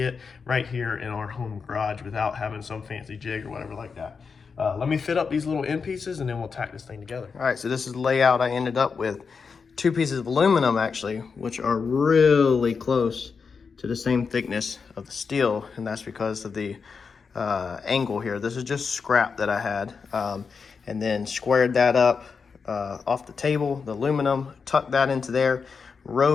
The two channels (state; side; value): quieter; right; 5.4 dB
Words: right here in our home garage without having some fancy jig or whatever like that. Let me fit up these little end pieces and then we'll tack this thing together. All right, so this is the layout I ended up with. 2 pieces of aluminum actually, which are really close to the same thickness of the steel, and that's because of the angle here. This is just scrap that I had, and then squared that up off the table, the aluminum, tucked that into there,